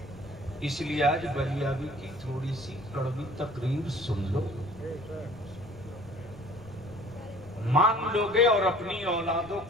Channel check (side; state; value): left; noise; rumble, 20 dB below the sound